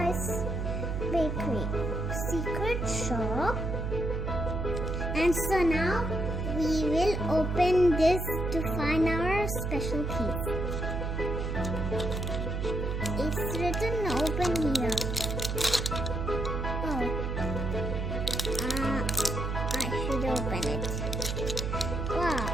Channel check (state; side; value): noise; right; hum, 2 dB below the sound